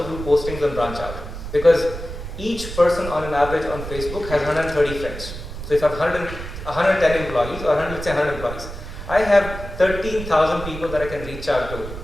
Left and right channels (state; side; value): noise; right; rumble, 9 dB below the sound